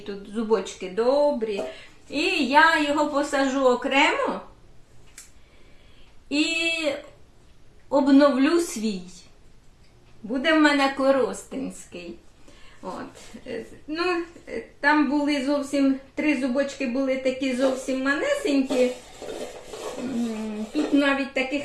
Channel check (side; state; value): both; identical; correlation 1.00